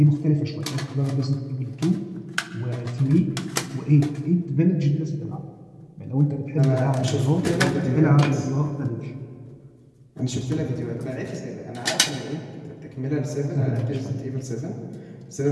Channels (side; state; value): both; identical; correlation 1.00